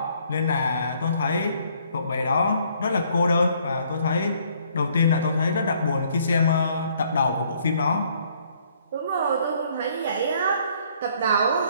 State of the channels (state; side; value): inverted; both; correlation -0.64